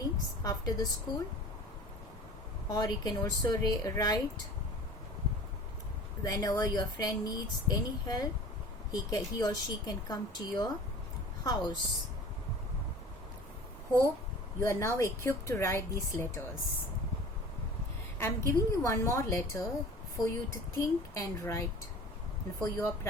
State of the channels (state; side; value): normal; both; correlation 0.43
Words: after the school. Or you can also write whenever your friend needs any help, he or she can come to your house. Hope you are now equipped to write these letters. I am giving you one more letter for you to think and write and for your